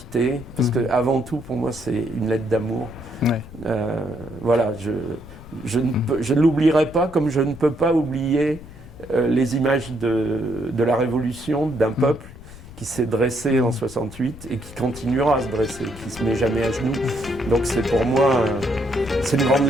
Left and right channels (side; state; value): left; noise; rumble, 17 dB below the sound